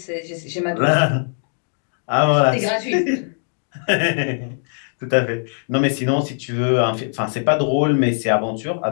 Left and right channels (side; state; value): right; silent; digital silence